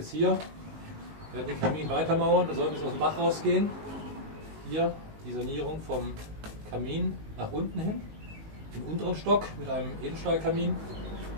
hier den Kamin weitermauern. Da soll es aus dem Dach rausgehen. Hier die Sanierung vom Kamin nach unten hin, im unteren Stock mit einem Edelstahlkamin.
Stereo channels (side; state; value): left; late; 19 ms